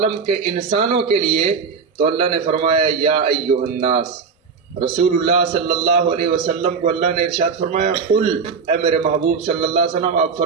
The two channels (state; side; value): quieter; left; 5.6 dB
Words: کے انسانوں کے لیے. تو اللہ نے فرمایا یا ایھا الناس. رسول اللہ صلی اللہ علیہ وسلم کو اللہ نے ارشاد فرمایا قل، اے میرے محبوب صلی اللہ علیہ وسلم آپ